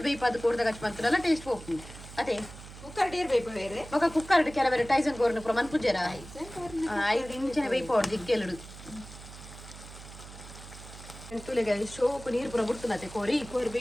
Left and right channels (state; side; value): noise; right; hum, 15 dB below the sound